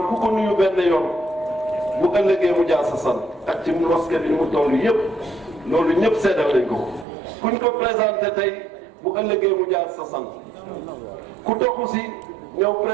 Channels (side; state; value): left; drops out; at 7.1 s